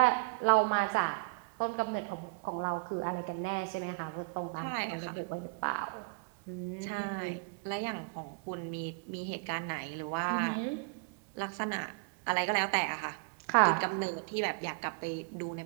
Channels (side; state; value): left; quieter; 31.6 dB